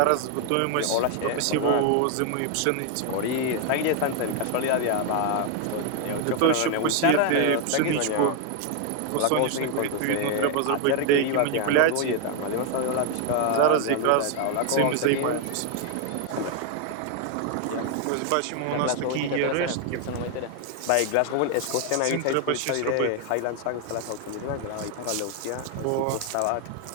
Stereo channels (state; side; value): different; both; correlation 0.00